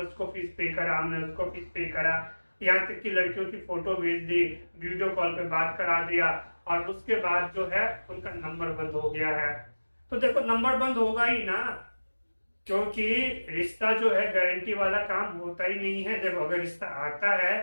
फीस पे करा, हमने उसको फीस पे करा, यहाँ तक कि लड़कियों की फोटो भेज दी, वीडियो कॉल पे बात करा दिया, और उसके बाद जो है उनका नंबर बंद हो गया है। तो देखो नंबर बंद होगा ही ना, क्योंकि रिश्ता जो है गारंटी वाला काम होता ही नहीं है। देखो अगर रिश्ता आता है,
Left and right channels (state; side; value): inverted; both; correlation -1.00